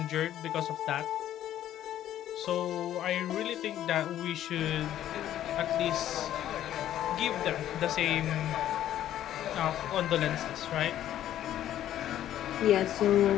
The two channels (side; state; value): right; quieter; 11.9 dB